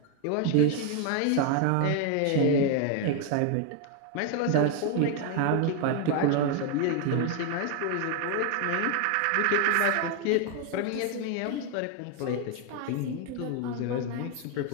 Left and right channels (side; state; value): both; different; correlation 0.01